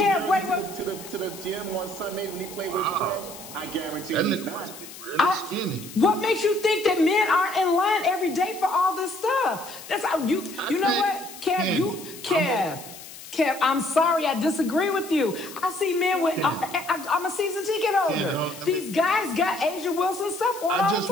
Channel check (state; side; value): noise; left; hiss, 15 dB below the sound